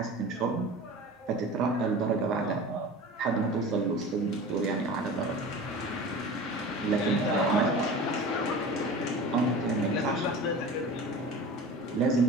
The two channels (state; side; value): normal; both; correlation 0.36